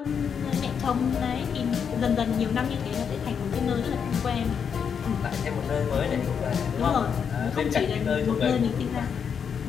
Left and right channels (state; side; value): quieter; right; 7.1 dB